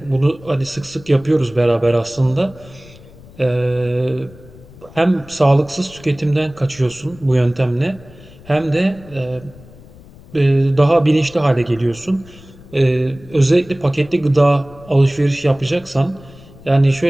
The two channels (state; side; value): noise; left; rumble, 22 dB below the sound